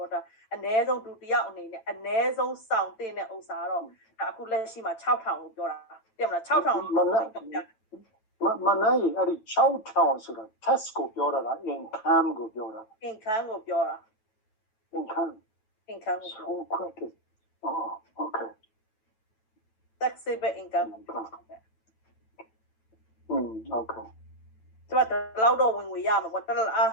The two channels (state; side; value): late; right; 9.1 ms